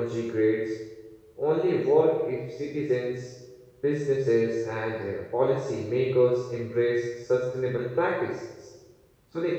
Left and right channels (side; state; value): both; identical; correlation 1.00